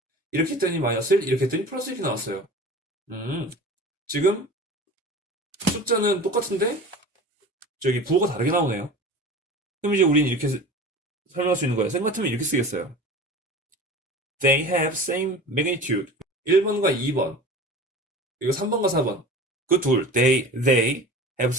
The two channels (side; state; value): both; normal; correlation 0.37